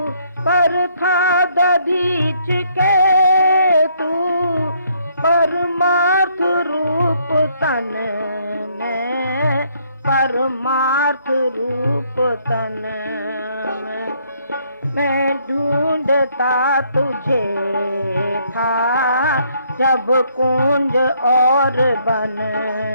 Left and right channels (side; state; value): both; inverted; correlation -0.68